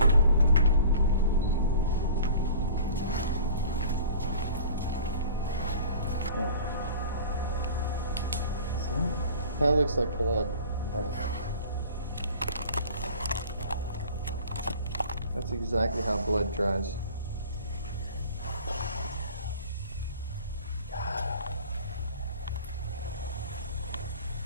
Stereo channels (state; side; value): inverted; both; correlation -0.44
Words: That looks like blood. That's exactly how blood dries.